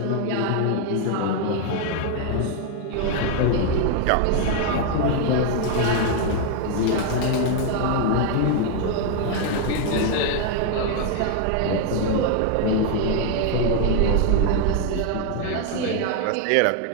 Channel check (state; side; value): different; both; correlation 0.00